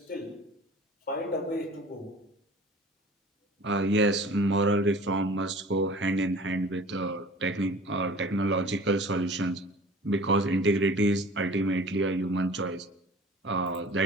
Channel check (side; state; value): both; normal; correlation 0.44